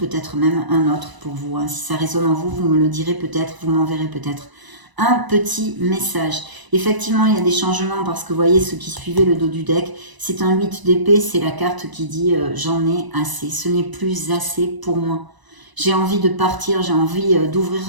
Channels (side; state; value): left; late; 1.0 ms